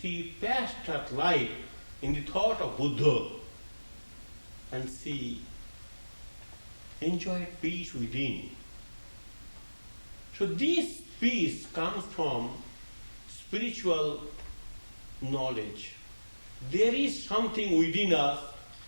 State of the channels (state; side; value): inverted; both; correlation -1.00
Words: passed her life in the thought of Buddha, and she enjoyed peace within. So this peace comes from spiritual knowledge. There is something within us,